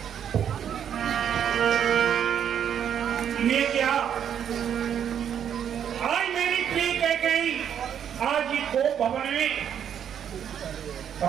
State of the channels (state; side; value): quieter; left; 8.9 dB